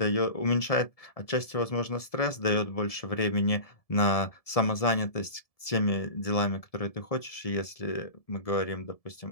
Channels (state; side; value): late; right; 1.7 ms